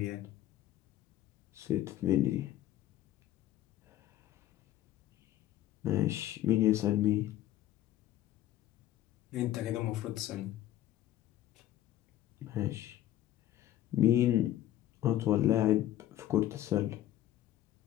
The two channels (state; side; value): quieter; right; 13.1 dB